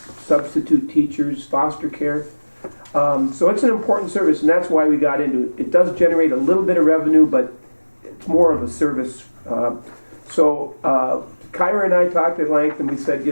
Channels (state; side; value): inverted; both; correlation -1.00